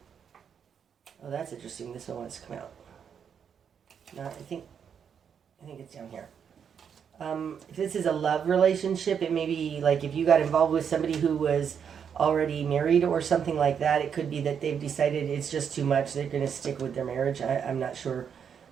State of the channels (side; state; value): left; quieter; 7.5 dB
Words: Oh, that's interesting. This one wants to come out. No, I think it's down here. If this is a love relationship, it may be like if you got involved with somebody who was already married or something like that, it could be that they've decided it's just too much. They're going to stick with their marriage. I'm not sure.